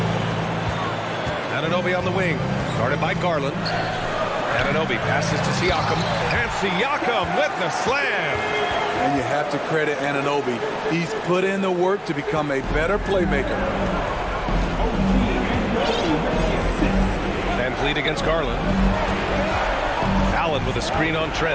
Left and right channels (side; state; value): both; identical; correlation 1.00